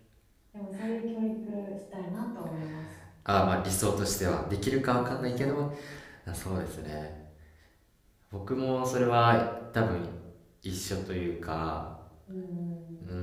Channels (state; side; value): identical; both; correlation 1.00